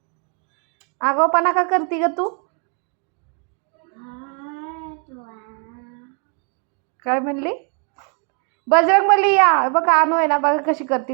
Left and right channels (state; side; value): quieter; left; 39.5 dB